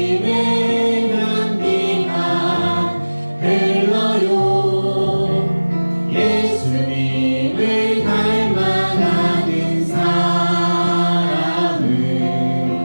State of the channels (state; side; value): inverted; both; correlation -1.00